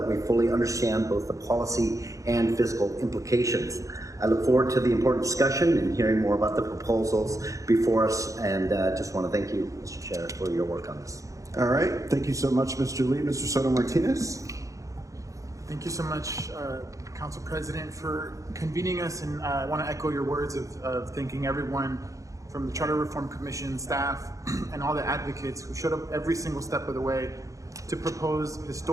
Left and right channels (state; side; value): late; left; 0.16 ms